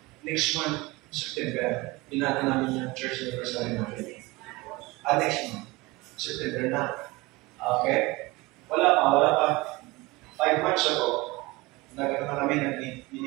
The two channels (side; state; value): left; quieter; 22.5 dB